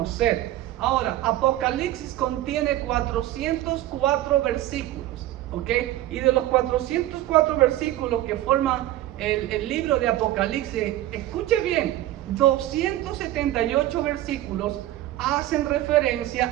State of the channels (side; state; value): left; quieter; 14.6 dB